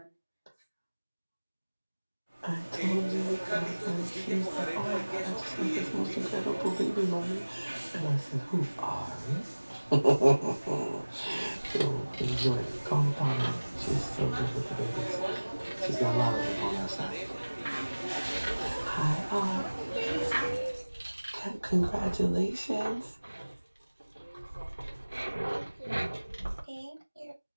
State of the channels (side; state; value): both; inverted; correlation -1.00